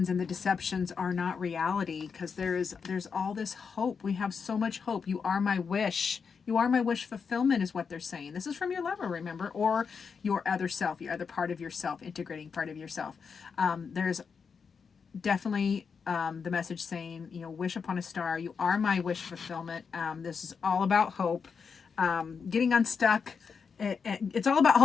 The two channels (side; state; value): right; quieter; 5.9 dB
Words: and the deceptions are not reality, because there's all this hope. We have so much hope. You are my wish. You are my wish fulfillment is what they're saying. This is from your lover, remember, or your other self, your other part of yourself, integrating part of yourself. There's definitely the message saying, wish upon a star. You are my wish fulfillment. This is all about hope. Getting unstuck. It's all about